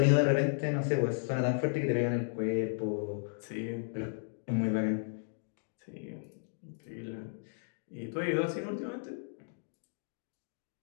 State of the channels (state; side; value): silent; right; digital silence